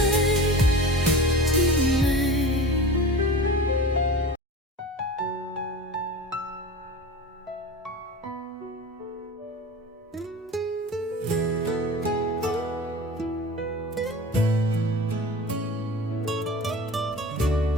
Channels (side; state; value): both; normal; correlation 0.34